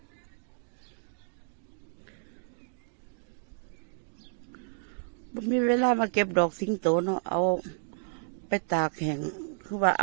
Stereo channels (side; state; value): left; silent; digital silence